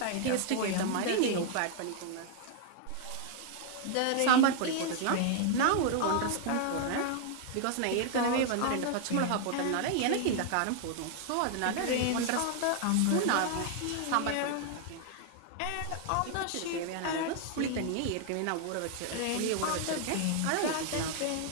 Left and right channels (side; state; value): both; different; correlation 0.00